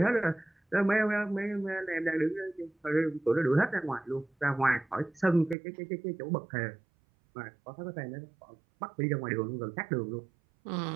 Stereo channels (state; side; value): drops out; left; at 5.6 s